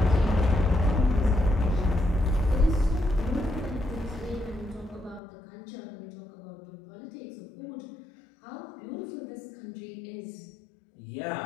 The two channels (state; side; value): drops out; right; at 5.2 s